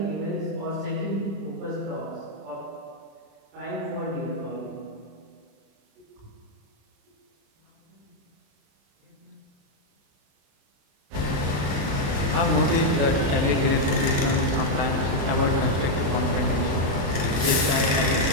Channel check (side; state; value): left; late; 35 ms